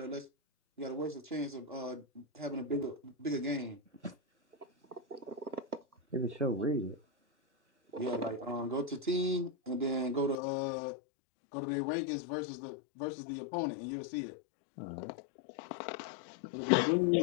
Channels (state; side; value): drops out; right; at 10.4 s